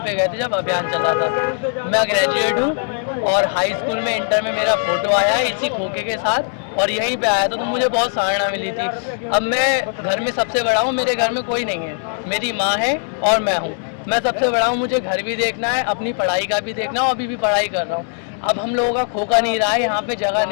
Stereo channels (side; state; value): right; silent; digital silence